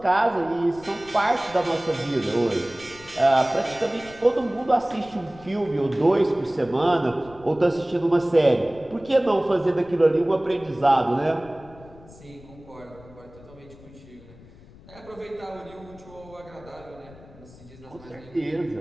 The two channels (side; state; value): left; noise; rumble, 21 dB below the sound